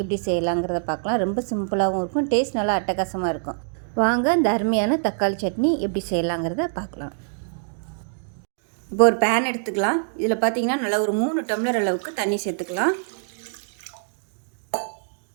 எப்படி செய்யலாங்கிறத பார்க்கலாம். ரொம்ப சிம்பிளாகவும் இருக்கும், டேஸ்ட் நல்லா அட்டகாசமாக இருக்கும். வாங்க இந்த அருமையான தக்காளி சட்னி எப்படி செய்யலாங்கிறத பார்க்கலாம். இப்போ ஒரு பேன் எடுத்துக்கலாம். இதில் பார்த்திங்கன்னா நல்லா ஒரு 3 டம்ளர் அளவுக்கு தண்ணி சேர்த்துக்கலாம்.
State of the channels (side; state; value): left; silent; digital silence